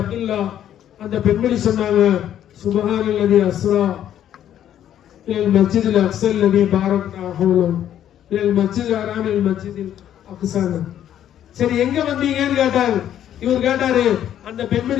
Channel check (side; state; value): right; quieter; 10.7 dB